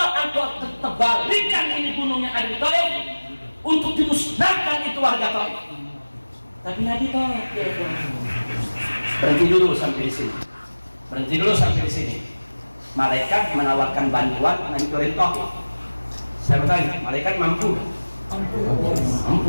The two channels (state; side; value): inverted; both; correlation -1.00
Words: engkau terbalikan ini gunungnya ada di Taif untuk dimusnahkan itu warga Taif. Tapi Nabi tolak, ya, berhenti dulu sampai di sini. Berhenti dulu sampai di sini. Malaikat menawarkan bantuan menghancurin Taif. Saya bertanya, malaikat mampu? Mampu.